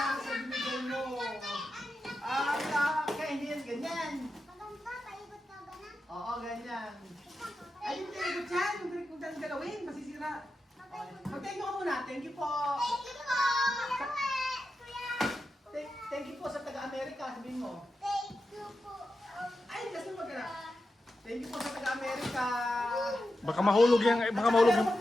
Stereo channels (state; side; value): normal; both; correlation 0.90